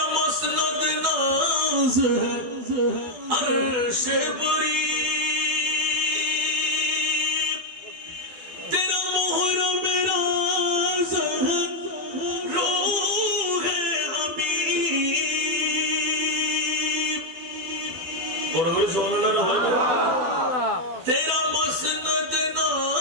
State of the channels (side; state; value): left; late; 12 ms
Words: মসনদ নাজ আরশ বরি तेरा मसनद